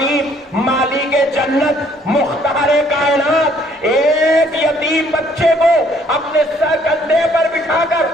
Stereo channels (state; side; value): normal; both; correlation 0.63